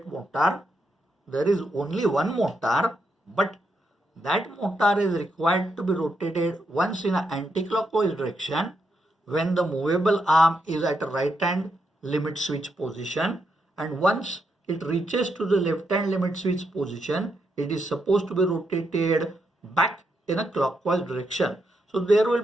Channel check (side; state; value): both; normal; correlation 0.81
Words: motor. There is only one motor, but that motor is required to be rotated once in an anti-clockwise direction when the movable arm is at a right hand limit switch position, and once it reaches to the left hand limit switch position, it is supposed to be rotated back in a clockwise direction. So there will